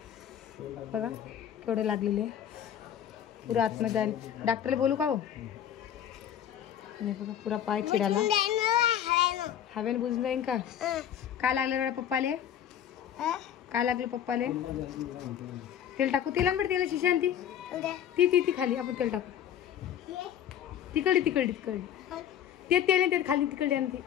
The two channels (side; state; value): right; quieter; 9.9 dB